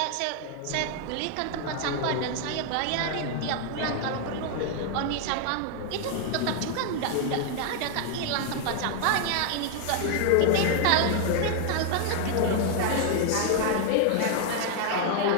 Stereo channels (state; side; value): different; both; correlation 0.00